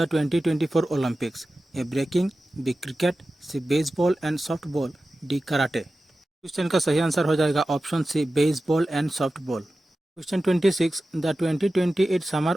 2024 Olympics? A breaking, B cricket, C baseball and softball, D karate. Question का सही answer हो जाएगा option C baseball and softball. Question 26, the 2028 summer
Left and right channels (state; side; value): normal; both; correlation 0.94